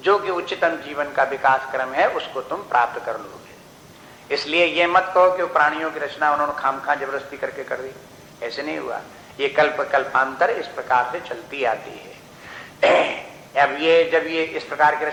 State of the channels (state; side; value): identical; both; correlation 1.00